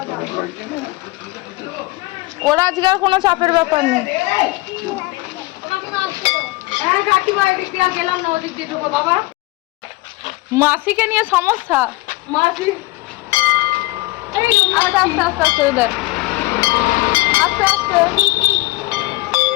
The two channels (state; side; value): quieter; right; 21.2 dB